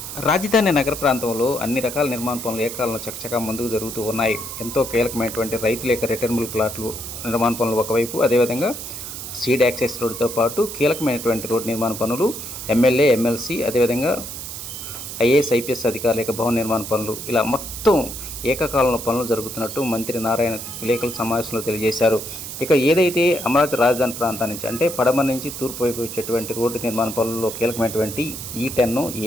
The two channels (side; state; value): right; noise; hiss, 8 dB below the sound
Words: రాజధాని నగర ప్రాంతంలో అన్ని రకాల నిర్మాణ పనులు ఏకాలంలో చకచకా ముందుకు జరుగుతూ ఉన్నాయి. ఎంతో కీలకమైనటువంటి రైతుల యొక్క రిటర్నబుల్ ప్లాట్లు నిర్మాణ పనులు ఒకవైపు, అదేవిధంగా సీడ్ యాక్సెస్ రోడ్డుతో పాటు కీలకమైనటువంటి రోడ్డు నిర్మాణ పనులు, ఎమ్మెల్యే, ఎమ్మెల్సీ, అదేవిధంగా ఐఏఎస్, ఐపీఎస్ అధికారుల యొక్క భవన నిర్మాణ పనులు, ఇలా మొత్తం ఏకకాలంలో పనులు జరుగుతున్నట్టు మంత్రి నారాయణ విలేకరుల సమావేశంలో తెలియజేశారు. ఇక ఏదైతే అమరావతి రాజధాని ప్రాంతం నుంచి అంటే పడమర నుంచి తూర్పు వైపు వచ్చేటువంటి రోడ్డు నిర్మాణ పనుల్లో కీలకమైనటువంటి E10,